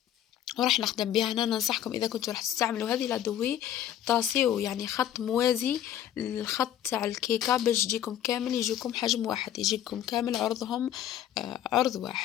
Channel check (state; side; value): quieter; right; 11.1 dB